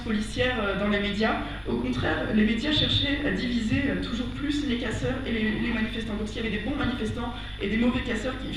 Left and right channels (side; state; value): both; identical; correlation 1.00